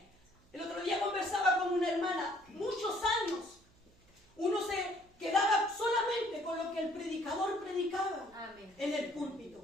El otro día conversaba con una hermana, muchos años, uno se quedaba solamente con lo que el predicador predicaba Amén. en el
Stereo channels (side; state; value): right; noise; hum, 30 dB below the sound